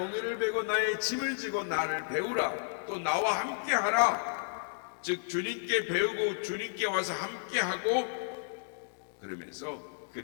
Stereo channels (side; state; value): right; silent; digital silence